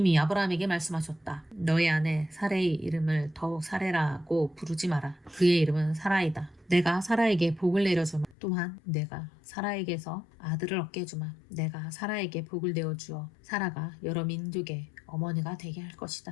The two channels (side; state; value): right; drops out; at 8.3 s